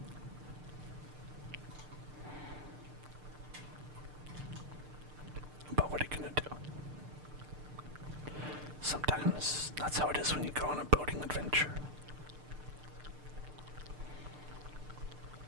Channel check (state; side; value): late; left; 6.7 ms